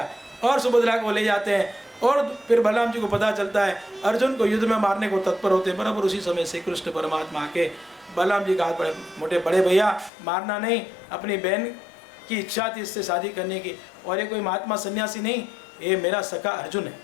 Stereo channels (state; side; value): drops out; right; at 10.1 s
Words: और सुभद्रा को ले जाते हैं। और फिर बलराम जी को पता चलता है, अर्जुन को युद्ध में मारने को तत्पर होते हैं। बराबर उसी समय से कृष्ण परमात्मा आके बलराम जी का हाथ मोटे बड़े भैया मारना नहीं, अपनी बहन की इच्छा थी इससे शादी करने की, और ये कोई महात्मा सन्यासी नहीं, ये मेरा सखा अर्जुन है।